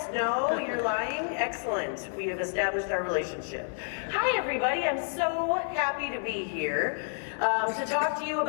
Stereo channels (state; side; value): silent; right; digital silence